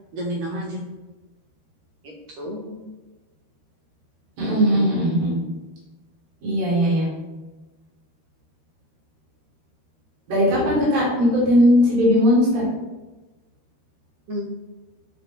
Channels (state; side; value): late; left; 13 ms